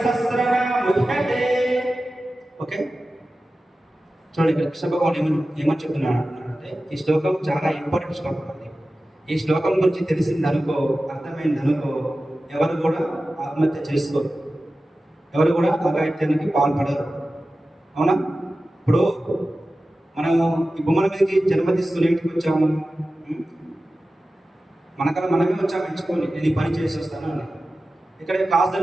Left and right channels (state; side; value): normal; both; correlation 0.95